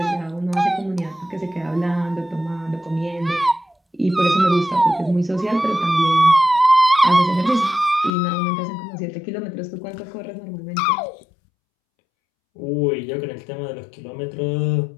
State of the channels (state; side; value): drops out; right; at 8.1 s